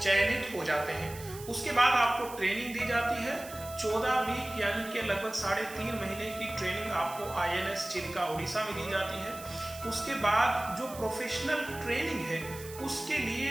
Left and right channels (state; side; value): noise; right; hiss, 15 dB below the sound